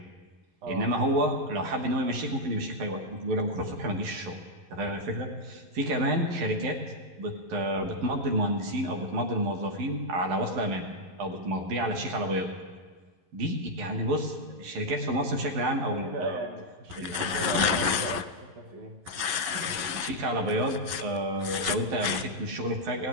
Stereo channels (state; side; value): late; left; 11 ms